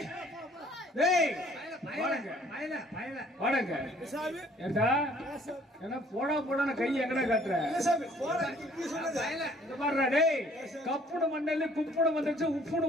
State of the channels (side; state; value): both; normal; correlation 0.58